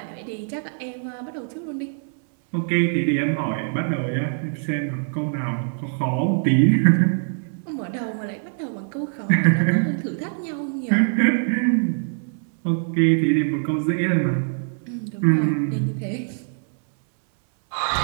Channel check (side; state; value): left; silent; 63 dB below the other